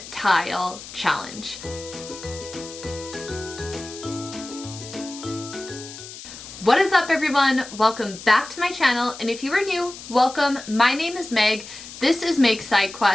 tile challenge. What is up, everyone? Welcome back to my channel, and if you are new, welcome. My name is Meg. This is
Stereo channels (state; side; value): noise; left; hiss, 14 dB below the sound